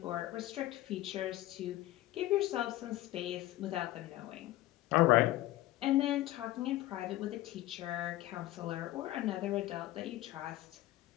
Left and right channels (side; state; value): right; quieter; 16.0 dB